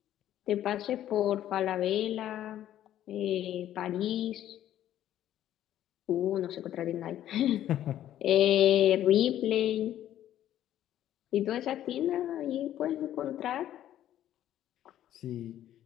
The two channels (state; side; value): quieter; right; 12.0 dB